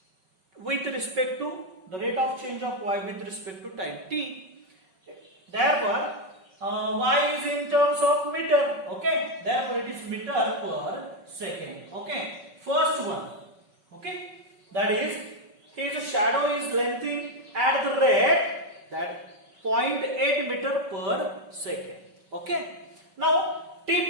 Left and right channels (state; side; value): late; left; 5.3 ms